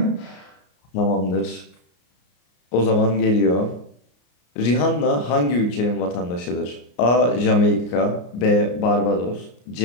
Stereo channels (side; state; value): right; late; 33 ms